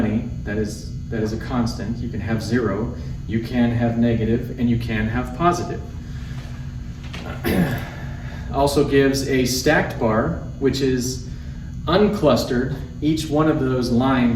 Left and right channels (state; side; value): identical; both; correlation 1.00